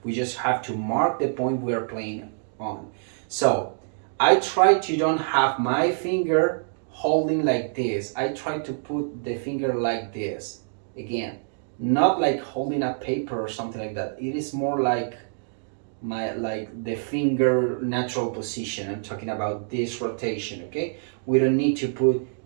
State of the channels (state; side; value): silent; left; digital silence